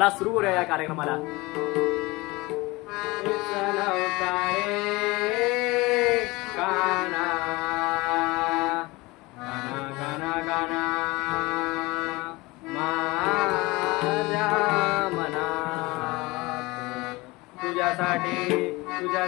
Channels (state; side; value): quieter; right; 22.6 dB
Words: सुरू करूया या कार्यक्रमाला.